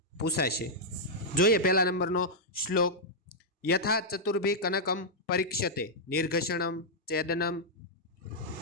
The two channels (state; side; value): normal; both; correlation -0.06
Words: પૂછાશે। જોઈએ પહેલા નંબરનો શ્લોક। યથા ચતુર્ભી કનકમ પરીક્ષતે નિર્ઘષણમ ચેદનમ